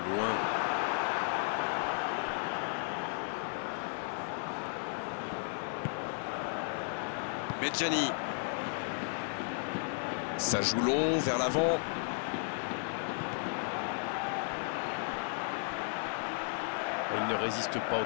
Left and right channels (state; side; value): silent; right; 55 dB below the other